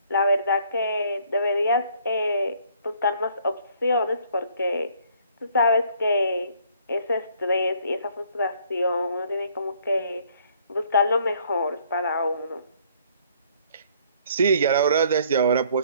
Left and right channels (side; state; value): both; inverted; correlation -0.62